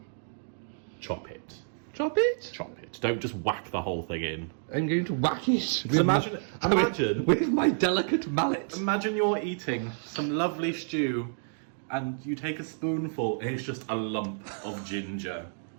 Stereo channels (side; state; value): left; silent; digital silence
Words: Chop it. Chop it. Chop it. Don't just whack the whole thing in. I'm going to whack it. With imagine with my delicate mallet. Imagine you're eating some lovely stew and you take a spoonful and it's just a lump of ginger.